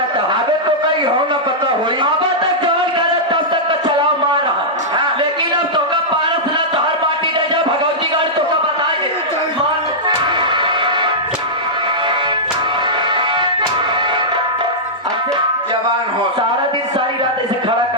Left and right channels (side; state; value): both; normal; correlation -0.11